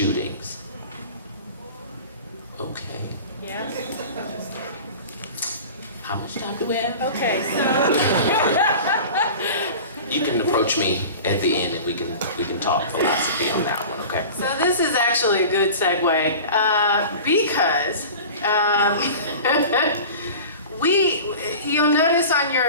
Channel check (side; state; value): both; inverted; correlation -0.36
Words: Okay. Yeah. How much time do we have? Okay, You can approach me at the end and we can talk philosophy on that one, okay? So this is actually a good segue because you'll notice on